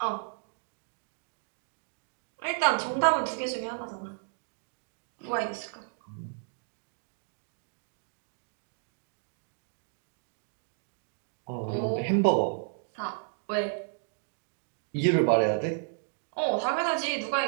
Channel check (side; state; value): left; silent; digital silence